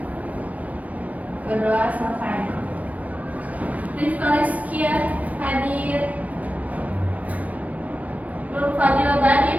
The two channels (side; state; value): left; late; 0.070 ms